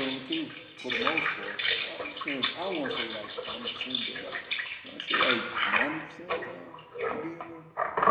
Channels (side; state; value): both; identical; correlation 1.00